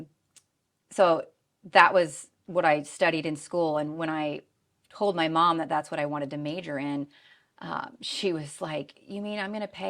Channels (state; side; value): identical; both; correlation 1.00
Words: So that was what I studied in school, and when I told my mom that that's what I wanted to major in, she was like, "You mean I'm going to